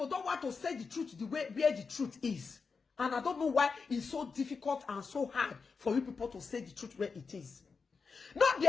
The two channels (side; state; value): right; quieter; 5.0 dB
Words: don't want to say the truth the way where the truth is. And I don't know why it's so difficult and so hard for you people to say the truth where it is. Not be